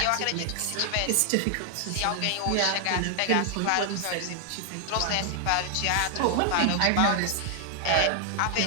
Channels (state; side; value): different; both; correlation 0.00